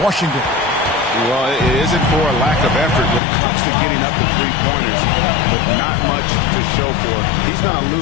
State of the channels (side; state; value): right; drops out; at 3.2 s